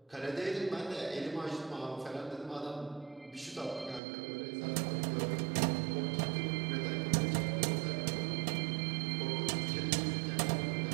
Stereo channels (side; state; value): left; drops out; at 4.0 s